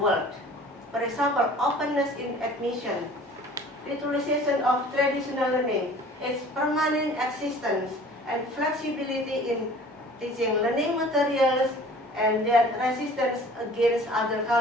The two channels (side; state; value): both; normal; correlation 0.47